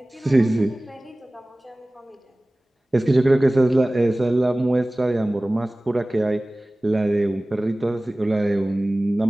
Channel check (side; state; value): both; normal; correlation 0.98